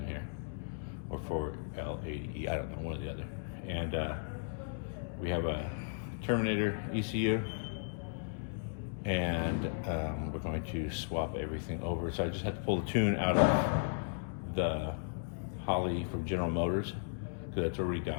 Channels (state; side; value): silent; right; digital silence